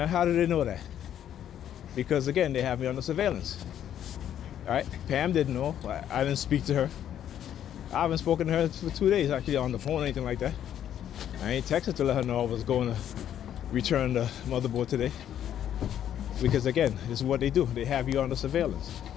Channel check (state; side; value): quieter; right; 10.3 dB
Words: do they know that? Because again, they have me under surveillance. All right, Pam didn't know. I didn't speak to her. I haven't spoken to her for 2 days actually on the phone or anything like that. I ain't texted to let her know I was going to return the motherboard today. Because again, this is what they do. They have you under surveillance.